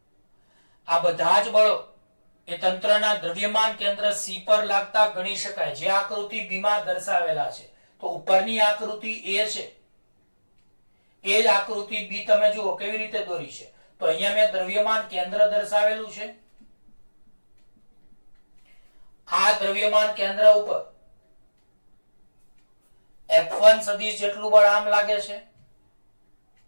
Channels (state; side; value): inverted; both; correlation -1.00